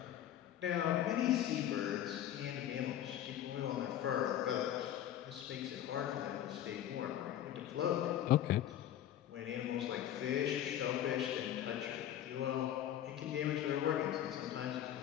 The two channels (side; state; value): right; quieter; 11.4 dB